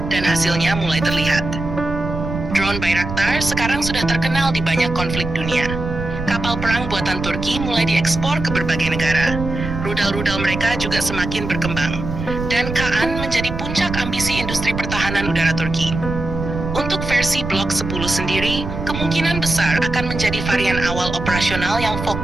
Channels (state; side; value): noise; right; rumble, 6 dB below the sound